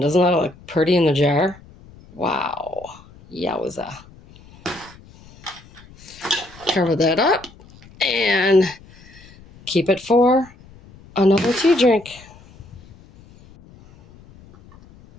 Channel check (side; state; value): left; noise; rumble, 24 dB below the sound